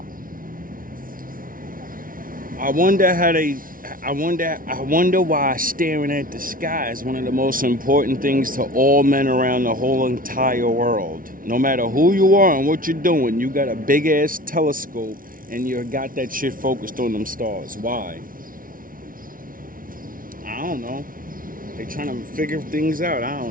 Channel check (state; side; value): late; left; 0.40 ms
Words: I wonder why staring at the sky is one of the most important things to all men around the whole entire world. No matter who you are and what you're doing, you got a big ass telescope and you got that shit focused on them stars. Why? I don't know. They trying to figure things out. I